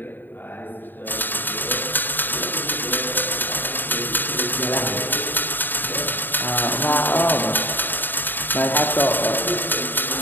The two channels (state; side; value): late; right; 0.092 ms